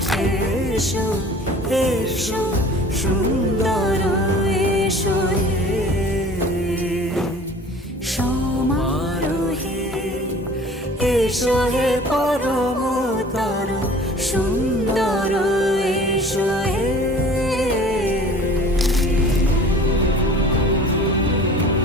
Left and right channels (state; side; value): normal; both; correlation 0.46